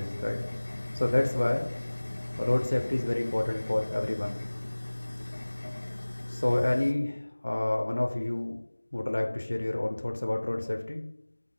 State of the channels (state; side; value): inverted; both; correlation -1.00